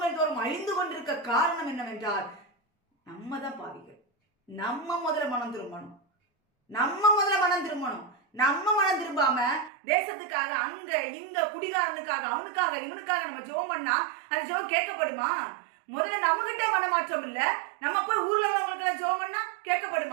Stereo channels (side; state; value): left; drops out; at 9.7 s